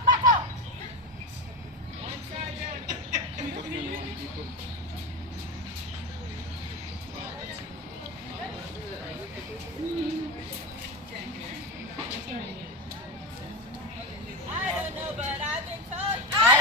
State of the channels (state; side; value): normal; both; correlation 0.18